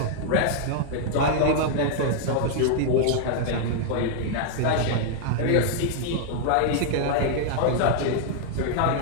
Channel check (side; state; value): both; different; correlation -0.01